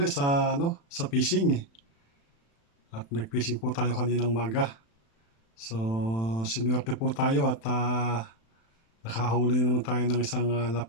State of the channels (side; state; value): right; late; 36 ms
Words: sa fishing. At nag-fishing po tayo kaninang maga. So, sinuwerte po tayo at nakahuli naman tayo ng isang